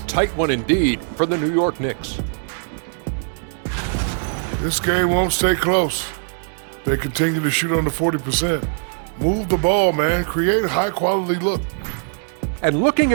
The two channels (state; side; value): silent; left; digital silence